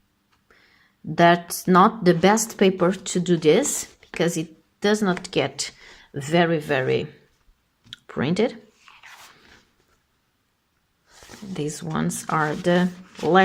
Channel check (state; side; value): identical; both; correlation 1.00